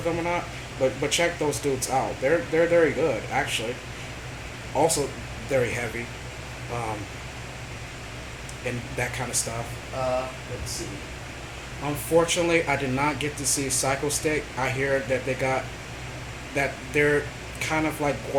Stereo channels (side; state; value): both; identical; correlation 1.00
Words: them or not, but check those dudes out. They're very good actually. Also very heavy, um, and that kind of stuff. Let's see. Unfortunately, I did not get to see Psycho Stick. I hear that they're kind of like